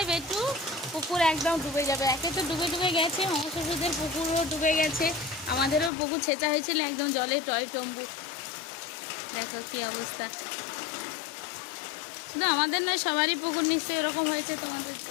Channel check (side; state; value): right; drops out; at 5.9 s